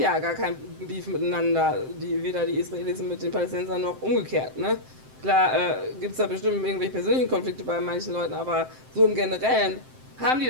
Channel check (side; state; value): left; late; 7.7 ms